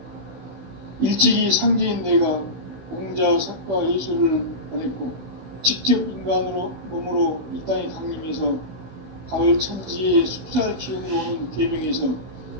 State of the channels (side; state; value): left; late; 15 ms